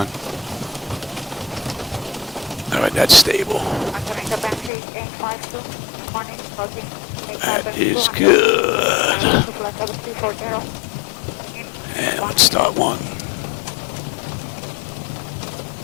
All right, that's stable. That is good. And let's start one.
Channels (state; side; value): drops out; right; at 4.7 s